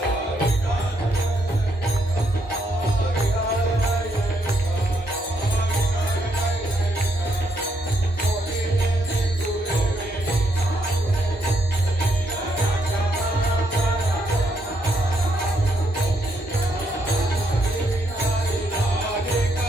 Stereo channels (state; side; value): normal; both; correlation 0.75